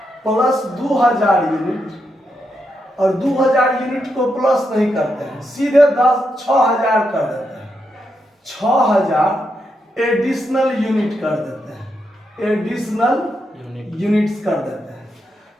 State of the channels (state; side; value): normal; both; correlation 0.83